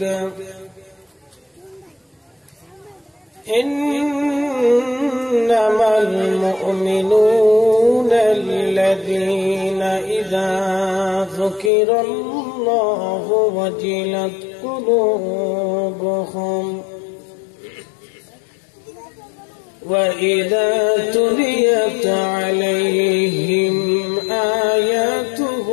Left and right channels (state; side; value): drops out; right; at 11.7 s